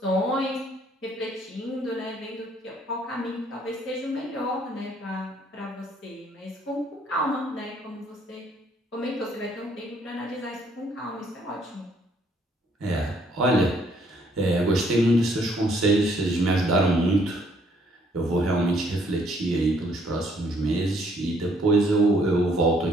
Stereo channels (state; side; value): normal; both; correlation 0.66